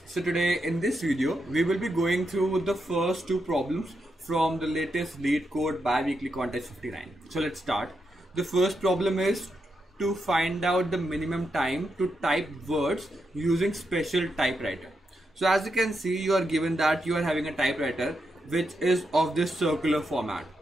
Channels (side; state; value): both; normal; correlation 0.84